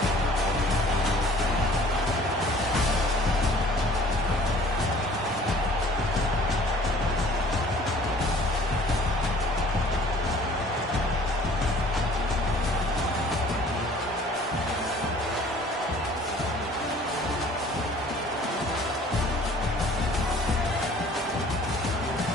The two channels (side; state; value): both; normal; correlation 0.51